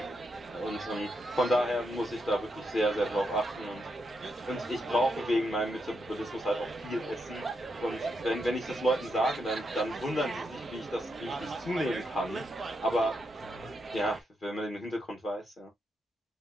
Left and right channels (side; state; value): both; normal; correlation 0.82